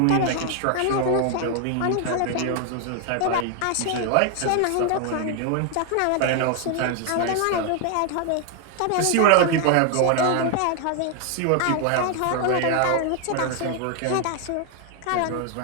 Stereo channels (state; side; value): different; both; correlation 0.00